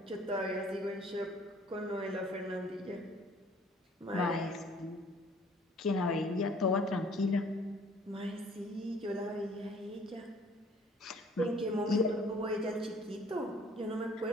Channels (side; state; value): both; normal; correlation 0.55